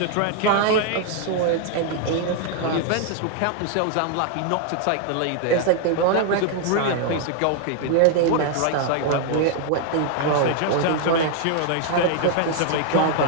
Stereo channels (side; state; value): both; different; correlation 0.00